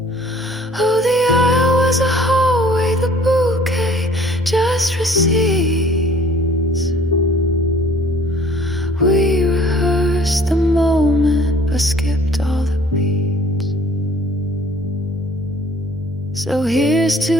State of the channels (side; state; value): both; normal; correlation 0.54